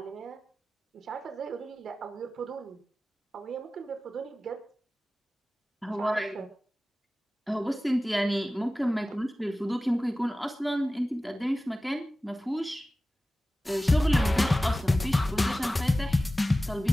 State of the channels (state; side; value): normal; both; correlation 0.96